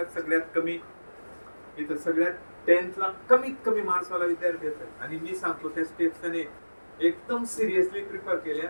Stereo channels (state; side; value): inverted; both; correlation -1.00